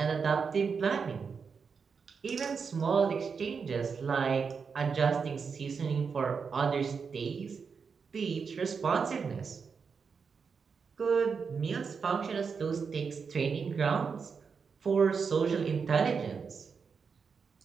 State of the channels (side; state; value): left; quieter; 5.7 dB